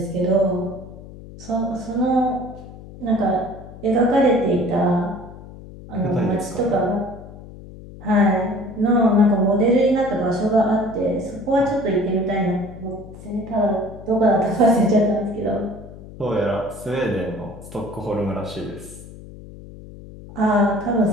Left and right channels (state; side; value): noise; left; hum, 16 dB below the sound